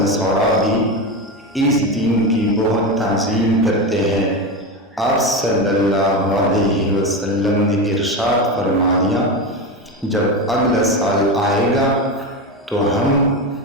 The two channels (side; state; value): both; normal; correlation 0.18